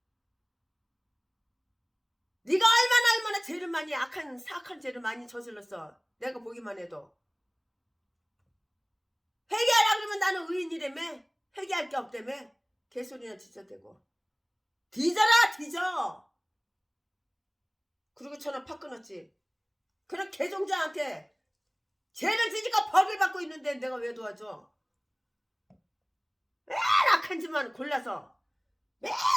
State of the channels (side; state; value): both; identical; correlation 1.00